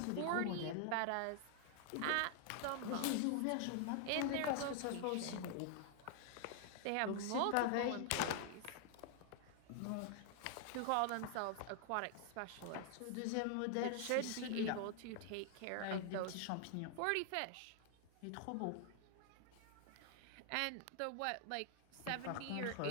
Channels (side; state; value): both; different; correlation 0.00